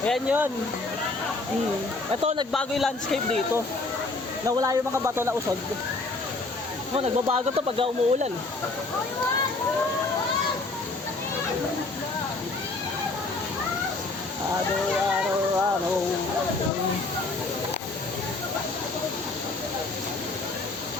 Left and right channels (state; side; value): quieter; right; 3.4 dB